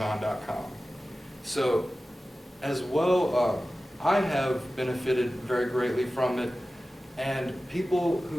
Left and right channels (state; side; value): normal; both; correlation 0.95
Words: So, as well, I have benefited very greatly from it, and people